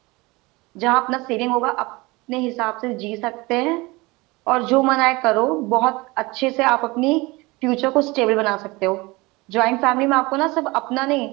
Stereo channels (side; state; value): left; quieter; 23.3 dB